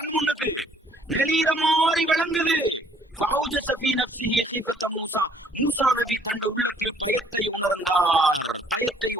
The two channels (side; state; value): both; normal; correlation 0.62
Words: முன்னுக்கு நெளிகிற மாதிரி விளங்குது. ஃபௌஜஸ ஃபீ நஃப்ஸிஹி ஹீஃபதம் மூசா. மூசா நபி தண்ட உள்ளத்தில் பயத்தை உணர்ந்தார். பயத்தை